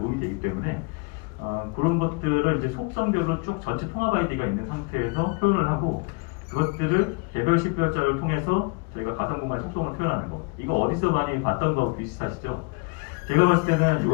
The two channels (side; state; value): right; quieter; 31.5 dB